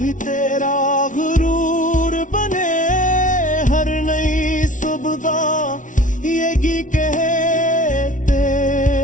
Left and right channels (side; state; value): right; late; 0.37 ms